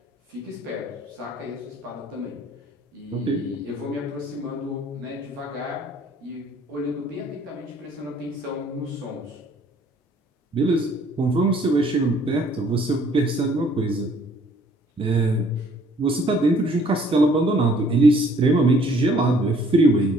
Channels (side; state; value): both; normal; correlation 0.60